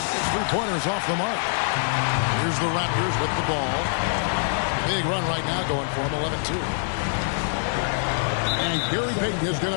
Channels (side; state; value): right; silent; digital silence